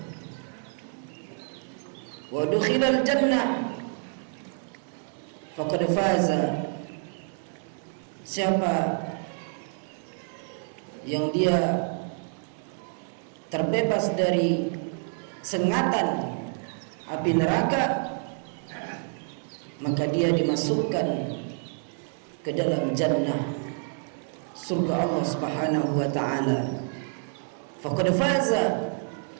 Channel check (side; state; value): left; silent; 59 dB below the other